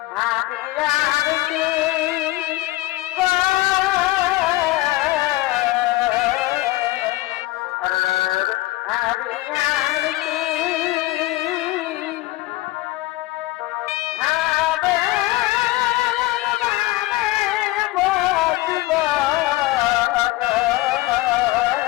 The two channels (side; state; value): right; quieter; 18.8 dB